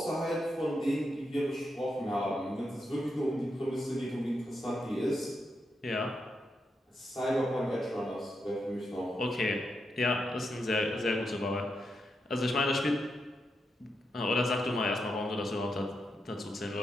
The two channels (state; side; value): normal; both; correlation 0.84